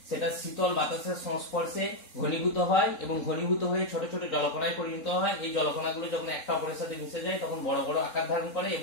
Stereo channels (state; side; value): late; right; 3.9 ms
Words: সেটা শীতল বাতাসের সংস্পর্শে ঘনীভূত হয় এবং ঘনীভূত হয়ে ছোট ছোট জলকণায় পরিণত হয়। এই জলকণাগুলো যখন একটা অপরের সাথে মিশে যায় তখন বড় বড় আকার ধারণ করে